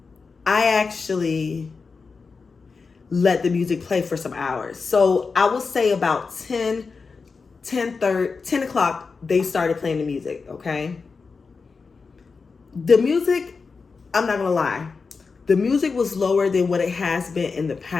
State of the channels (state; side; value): quieter; right; 4.7 dB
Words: I actually let the music play for some hours. So I will say about 10 o'clock, they started playing the music, okay? The music, I'm not going to lie. The music was lower than what it has been in the